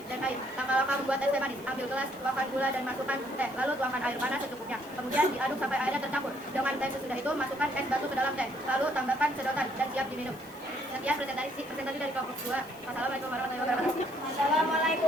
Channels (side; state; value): left; noise; hiss, 22 dB below the sound